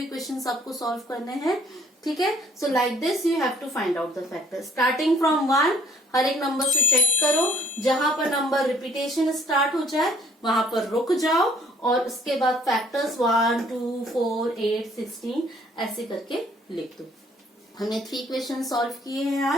क्वेश्चंस आपको सॉल्व करने हैं, ठीक है। So like this you have to find out the factor, starting from 1, हर एक नंबर से चेक करो, जहां पर नंबर रिपीटेशन स्टार्ट हो जाए वहां पर रुक जाओ, और उसके बाद फैक्टर्स 1 2 4 8 16 ऐसे करके लिख दो। हमने 3 क्वेश्चन सॉल्व किए हैं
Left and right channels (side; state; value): both; normal; correlation 0.60